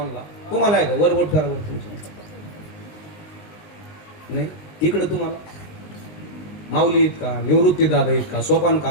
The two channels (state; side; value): late; right; 20 ms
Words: तुम्हाला आहे का? वरवट करावं तुमची नाही. इकडं तुम्हाला माऊली इतका, निवृत्ती दादा इतका, सोपान